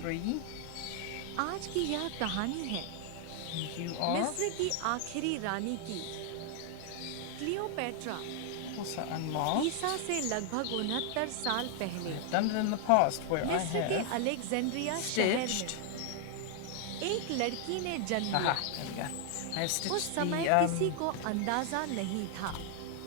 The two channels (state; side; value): different; both; correlation 0.00